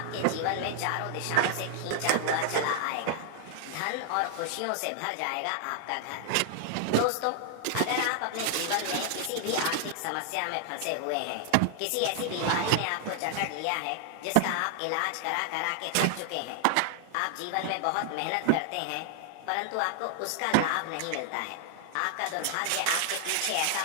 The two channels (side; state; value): both; different; correlation 0.00